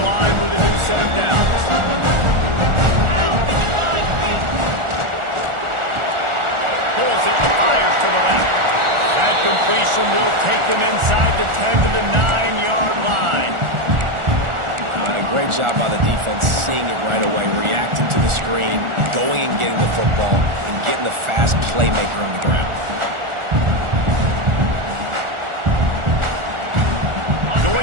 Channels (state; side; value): late; left; 1.4 ms